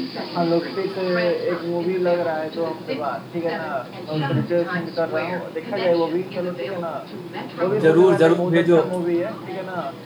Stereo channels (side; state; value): both; identical; correlation 1.00